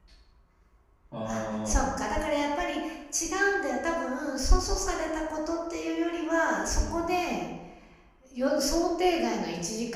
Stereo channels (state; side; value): identical; both; correlation 1.00